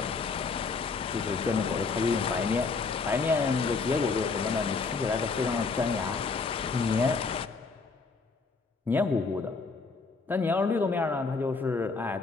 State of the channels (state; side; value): quieter; right; 4.5 dB